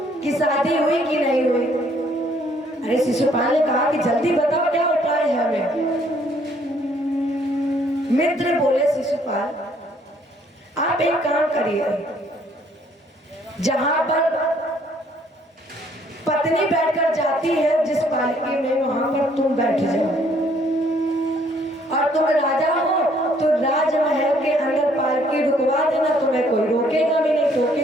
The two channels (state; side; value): normal; both; correlation 0.64